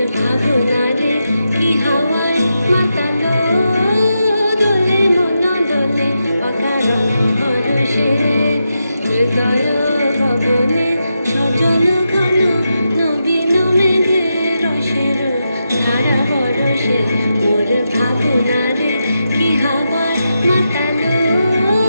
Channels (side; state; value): both; inverted; correlation -0.87